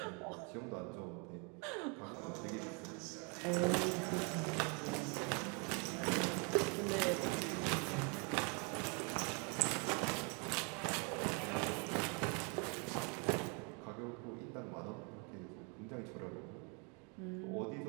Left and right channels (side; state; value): left; quieter; 34.5 dB